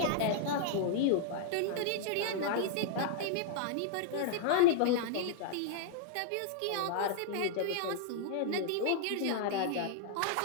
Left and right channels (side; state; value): both; different; correlation -0.01